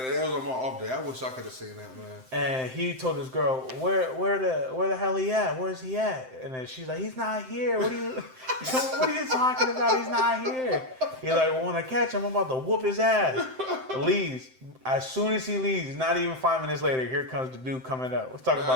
was on my off day. I wish I could have seen that, man. and he told his girl, where the hell he at? Where's he at? And then she's like, he's not here. What are you talking about? He's not here. He's like, well, when I catch him, I'm about to whoop his ass. Leaves. As soon as he leaves, not even 5 minutes later, here comes the dude coming up. Let's talk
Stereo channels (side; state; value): left; late; 7.7 ms